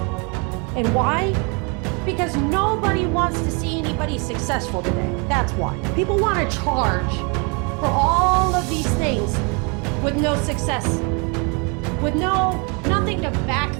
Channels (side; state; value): left; quieter; 32.7 dB